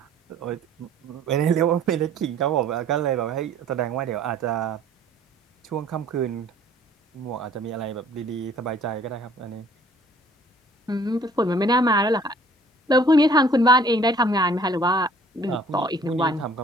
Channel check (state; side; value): normal; both; correlation 0.55